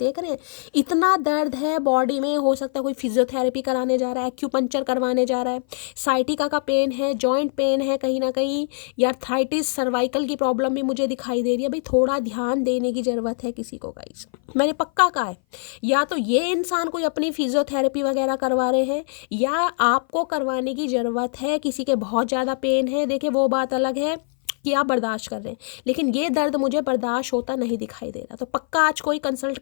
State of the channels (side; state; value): right; silent; 58 dB below the other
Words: रहे हैं इतना दर्द है बॉडी में। हो सकता है कोई फिजियोथेरेपी कराने जा रहा है, एक्यूपंक्चर करवाने जा रहा है, साइटिका का पेन है, जॉइंट पेन है कहीं ना कहीं, या आर्थराइटिस, सर्वाइकल की प्रॉब्लम भी मुझे दिखाई दे रही है। भाई थोड़ा ध्यान देने की ज़रूरत है किसी को गाइस, मैंने पक्का कहा है। या तो ये इंसान कोई अपनी फिजियोथेरेपी वगैरह करवा रहे हैं, या आपको करवाने की ज़रूरत है। किसी के बहुत ज़्यादा पेन है, देखिए वो बात अलग है कि आप बर्दाश्त कर रहे हैं, लेकिन ये दर्द मुझे बर्दाश्त होता नहीं दिखाई दे रहा। तो पक्का आज कोई कंसल्ट